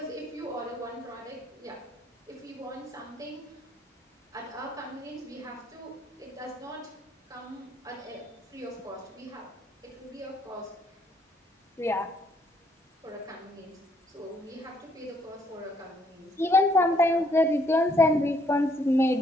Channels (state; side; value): normal; both; correlation 0.68